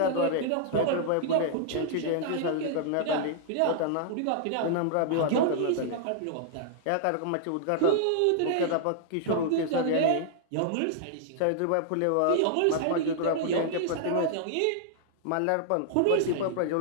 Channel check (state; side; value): different; both; correlation -0.01